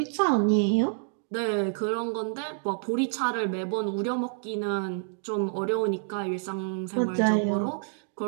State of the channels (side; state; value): left; silent; 59 dB below the other